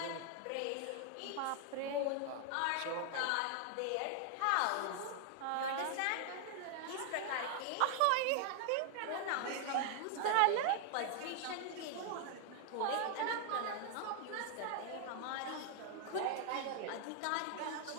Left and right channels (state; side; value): different; both; correlation 0.00